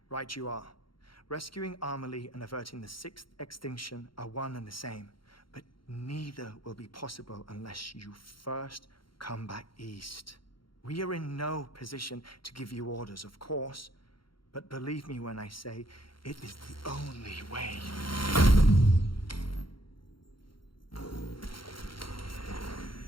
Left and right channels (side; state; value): right; late; 0.73 ms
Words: Right you are. Rescuing Amelie and averting the sixth extinction are one and the same. But neither will be possible unless you first come back east. We are in no position to give you orders, of course. But believe me when I say, it is the only way.